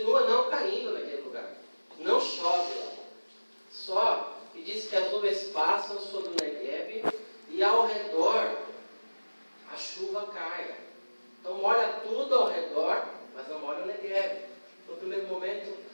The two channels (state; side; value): inverted; both; correlation -1.00